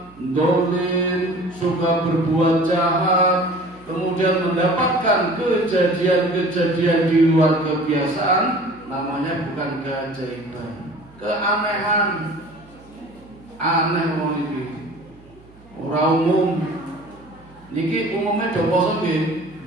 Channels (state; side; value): noise; right; hum, 26 dB below the sound